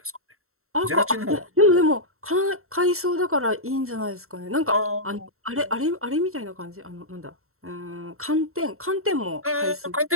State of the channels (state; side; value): late; left; 0.63 ms